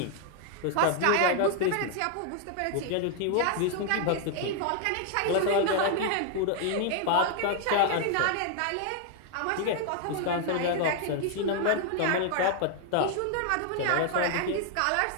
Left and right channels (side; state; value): both; different; correlation 0.00